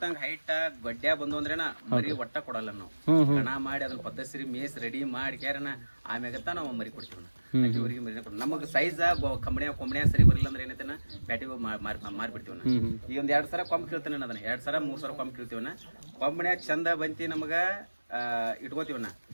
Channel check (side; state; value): both; inverted; correlation -1.00